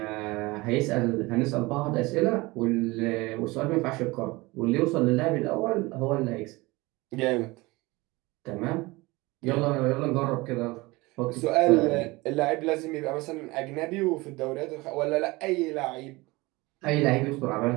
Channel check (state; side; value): quieter; left; 22.5 dB